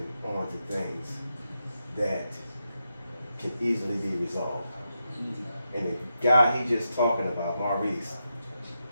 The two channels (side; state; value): both; inverted; correlation -0.86